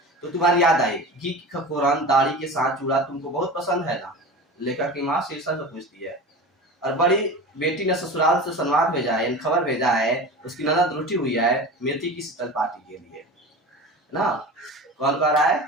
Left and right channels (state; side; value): normal; both; correlation 0.32